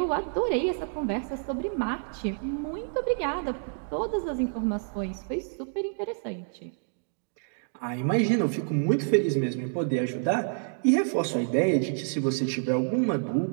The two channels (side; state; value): left; silent; digital silence